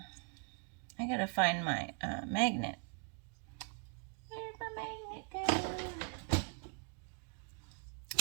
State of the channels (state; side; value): quieter; left; 38.0 dB